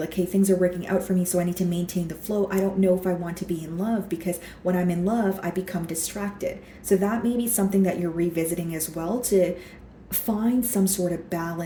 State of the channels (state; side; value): identical; both; correlation 1.00